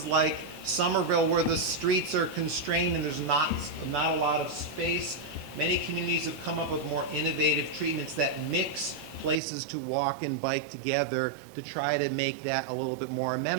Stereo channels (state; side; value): drops out; left; at 9.4 s